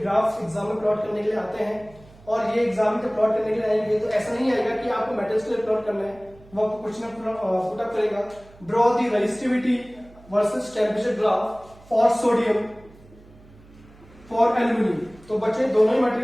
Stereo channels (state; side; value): noise; right; hum, 24 dB below the sound